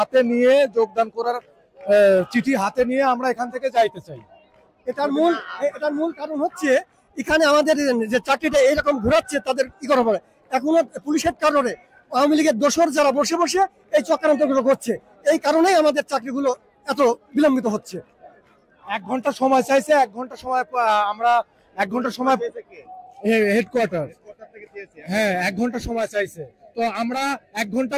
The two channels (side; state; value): both; identical; correlation 1.00